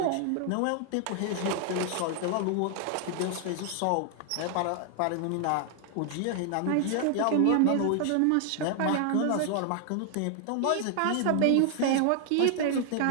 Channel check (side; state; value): both; different; correlation 0.00